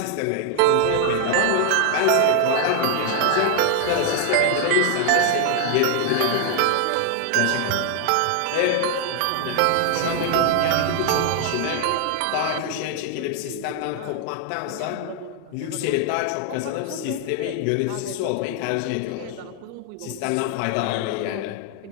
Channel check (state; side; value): different; both; correlation 0.00